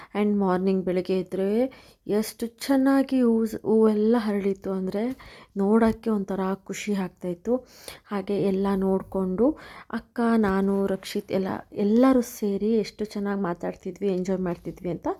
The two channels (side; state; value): both; identical; correlation 1.00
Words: ಆ್ಯಂಡ್ ಮಾರ್ನಿಂಗ್ ಬೆಳಗ್ಗೆ ಇದ್ದರೆ ಎಷ್ಟು ಚೆನ್ನಾಗಿ ಹೂವೆಲ್ಲ ಹರಳಿತ್ತು ಅಂದರೆ ನೋಡೋಕ್ಕೆ ಒಂಥರ ಖುಷಿ ಆಗ್ತಾಯಿತ್ತು. ಹಾಗೆ ಎಲ್ಲ ನೋಡಿಕೊಂಡು ಅಕ್ಕ, ನಾನು, ರಕ್ಷಿತ್ ಎಲ್ಲರೂ ಸೇರಿ ಎಷ್ಟು ಚೆನ್ನಾಗಿ ಮಾತಾಡ್ತಿದ್ವಿ, ಎಂಜಾಯ್ ಮಾಡ್ತಿದ್ವಿ ಅಂತ